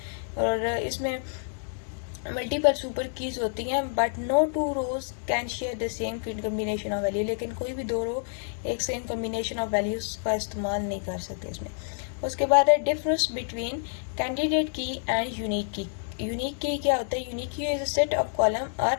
और इसमें मल्टीपल सुपर कीज होती हैं, but no two rows can share the same combination of value. लेकिन कोई भी दो रो एक सेम कम्बिनेशन ऑफ वैल्यूज का इस्तेमाल नहीं कर सकते इसमें। उसके बाद है difference between candidate key and unique key. Unique key क्या होता है? Unique key is a set of column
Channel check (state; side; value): silent; right; digital silence